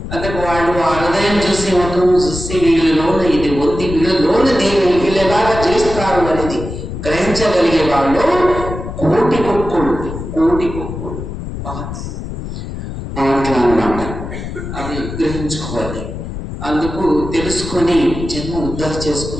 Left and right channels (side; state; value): left; noise; rumble, 8 dB below the sound